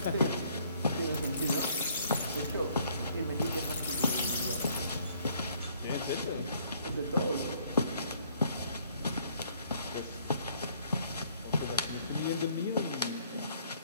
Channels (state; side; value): inverted; both; correlation -0.63